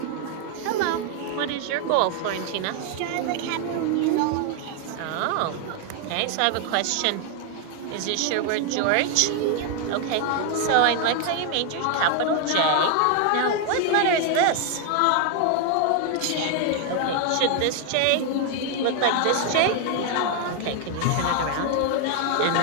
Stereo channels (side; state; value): both; different; correlation 0.00